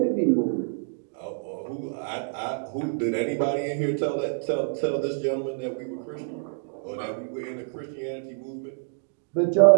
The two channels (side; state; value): left; silent; digital silence